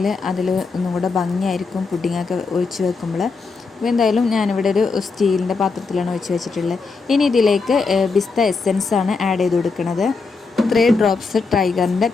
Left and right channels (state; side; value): quieter; right; 4.4 dB